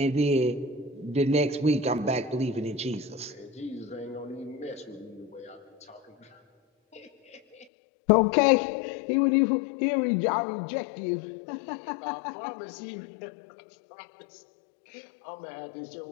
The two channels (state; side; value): drops out; right; at 7.7 s